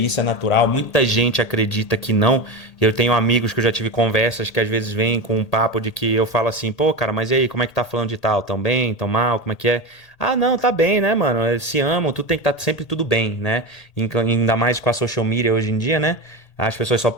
é natural. Muita gente acredita que não. Eu tenho amigos que eu já tive conversas que às vezes vêm com um papo de que eu falo assim, pô, cara, mas e aí, como é que tá falando de tal? Tão bem, tão mal, como é que é? Ah, não, tá bem, né, mano? Eles se amam, tudo tem que estar sempre tudo bem, né? Ainda mais com a social media hoje em dia, né? As pessoas só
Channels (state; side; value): late; right; 1.8 ms